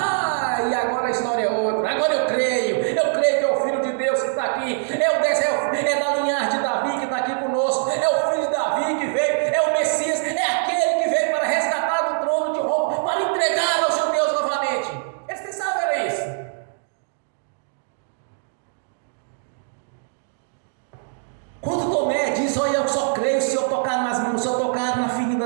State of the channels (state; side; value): silent; left; digital silence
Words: E agora a história é outra. Agora eu creio que é o Filho de Deus que está aqui, é da linhagem de Davi que está aqui conosco, é o Filho de Davi que veio, é o Messias, é aquele que veio para resgatar do trono de Roma, para entregar aos judeus novamente. Eles pensavam que era isso. Quando Tomé diz: olha, eu só creio se eu tocar nas mãos, se eu tocar na ferida